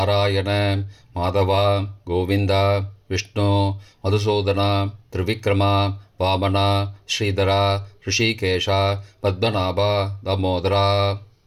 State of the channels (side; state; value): both; identical; correlation 1.00